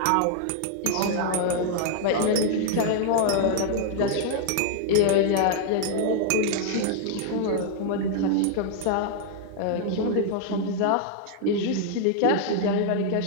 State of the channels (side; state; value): both; different; correlation -0.01